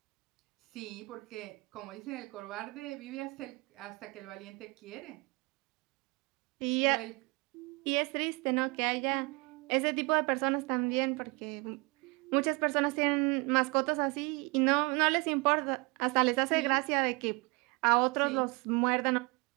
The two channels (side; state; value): left; quieter; 27.9 dB